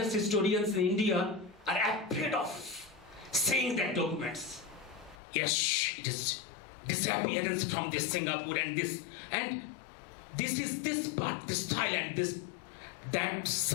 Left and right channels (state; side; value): drops out; right; at 5.2 s